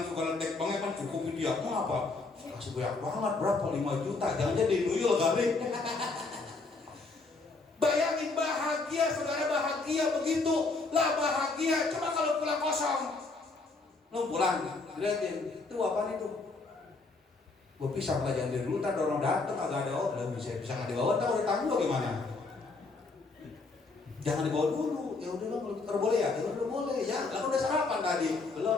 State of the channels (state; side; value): quieter; right; 3.7 dB